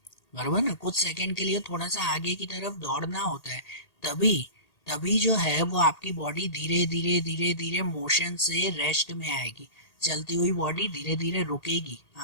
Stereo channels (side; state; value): right; late; 1.8 ms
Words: बराबर ना, कुछ सेकंड के लिए थोड़ा सा आगे की तरफ दौड़ना होता है। तभी तभी जो है वो आपकी बॉडी धीरे धीरे धीरे धीरे मोशन से रेस्ट में आएगी। चलती हुई बॉडी धीरे धीरे रुकेगी,